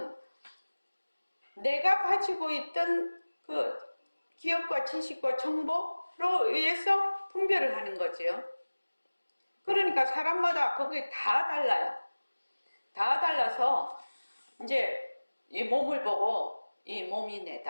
내가 가지고 있던 그 기억과 지식과 정보로 의해서 분별을 하는 거지요. 그러니까 사람마다 그게 다 달라요. 다 달라서 이제 이 몸을 보고 이 몸이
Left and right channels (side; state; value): both; inverted; correlation -1.00